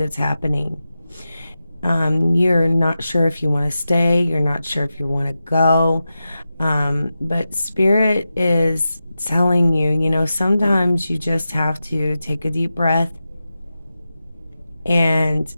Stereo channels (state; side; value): inverted; both; correlation -0.92